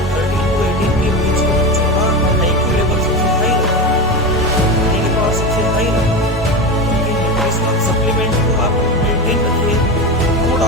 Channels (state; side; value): normal; both; correlation 0.20